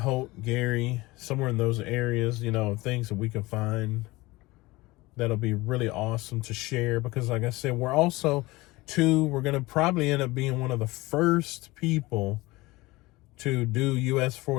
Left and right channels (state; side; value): quieter; right; 21.1 dB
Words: Gary, somewhere in those areas, things that we can find that'll be really awesome to share. Because like I said, we're also we're going to probably end up being one of the first people to do US